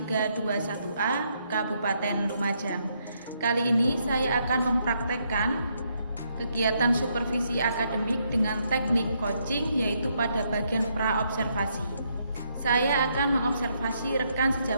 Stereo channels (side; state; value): both; inverted; correlation -0.75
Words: Kabupaten Lumajang. Kali ini saya akan mempraktekkan kegiatan supervisi akademik dengan teknik coaching, yaitu pada bagian praobservasi. Saya akan mengobservasi rekan